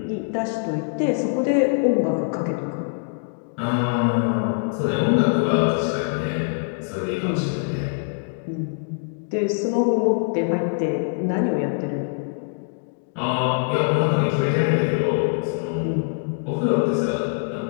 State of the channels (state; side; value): silent; right; digital silence